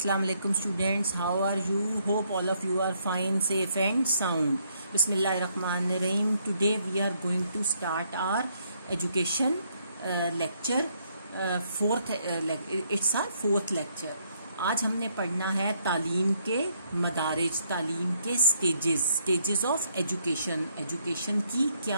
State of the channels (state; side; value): inverted; both; correlation -0.72